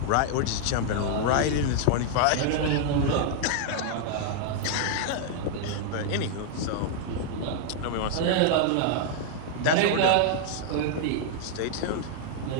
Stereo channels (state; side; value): different; both; correlation 0.00